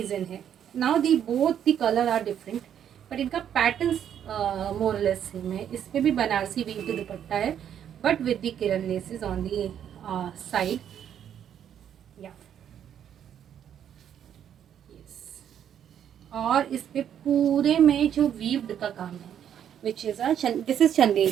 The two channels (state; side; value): quieter; left; 9.4 dB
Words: है। Now the both the colour are different, but इनका पैटर्न मोरलेस सेम है। इस पर भी बनारसी वीव की दुपट्टा है, but with the Kiran laces on the side. और इस पे पूरे में जो वीव्ड का काम है, which is this is